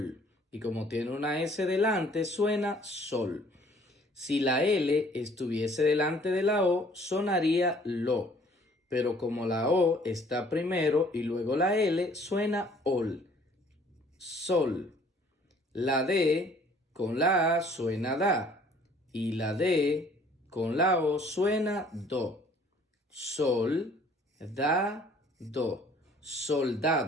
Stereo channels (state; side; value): normal; both; correlation 0.57